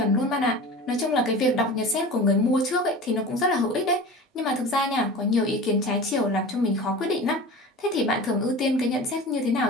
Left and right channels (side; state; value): both; normal; correlation 0.35